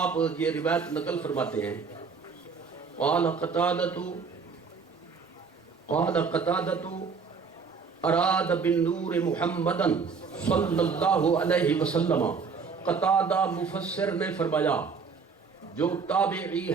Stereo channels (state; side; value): quieter; left; 5.4 dB